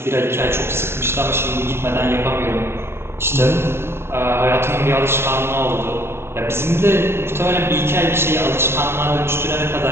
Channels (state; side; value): late; left; 0.12 ms